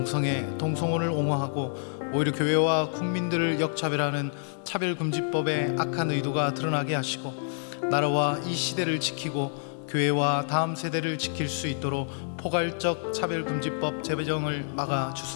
옹호하고 오히려 교회와 국민들을 역차별하는 차별금지법의 악한 의도가 드러나게 하시고, 나라와 이 시대를 지키고 교회와 다음 세대를 지킬 수 있도록 포괄적 차별금지법 제정을 막아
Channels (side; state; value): right; silent; digital silence